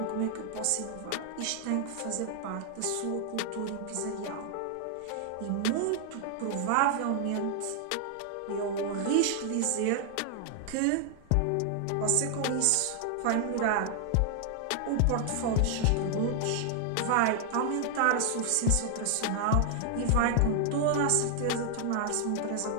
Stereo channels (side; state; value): both; different; correlation 0.00